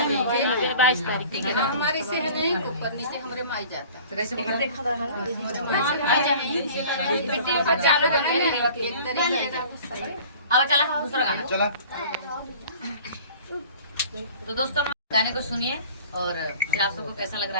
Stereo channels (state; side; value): inverted; both; correlation -0.45